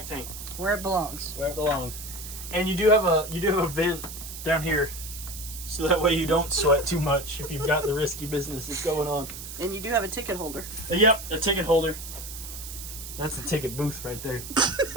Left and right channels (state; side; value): noise; right; hiss, 10 dB below the sound